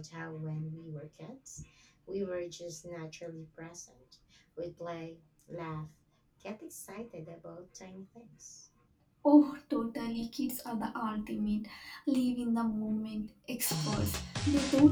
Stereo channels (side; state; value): both; identical; correlation 1.00